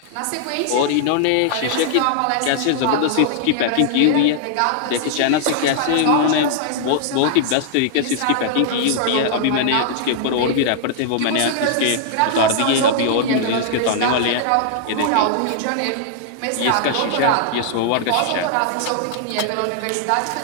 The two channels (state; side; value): different; both; correlation -0.01